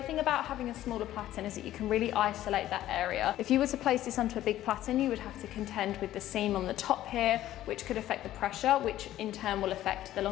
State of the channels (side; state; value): right; quieter; 13.6 dB